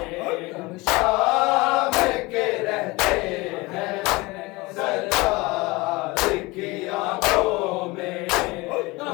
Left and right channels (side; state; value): right; quieter; 23.2 dB